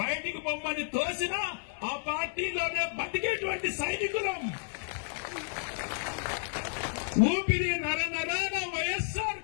బయటికి పొమ్మని తోసిన ఆ పార్టీలోనే బతికేటువంటి సైనికులం. ఊపిరి నరనరాన వైఎస్ఆర్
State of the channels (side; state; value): right; silent; 57 dB below the other